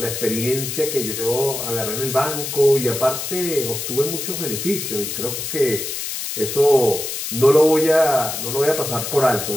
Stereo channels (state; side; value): noise; left; hiss, 5 dB below the sound